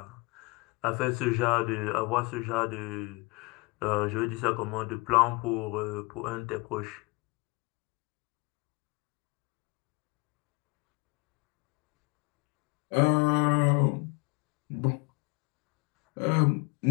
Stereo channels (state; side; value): quieter; right; 26.8 dB